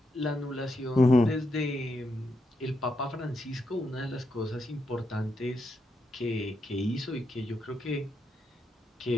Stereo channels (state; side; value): normal; both; correlation 0.83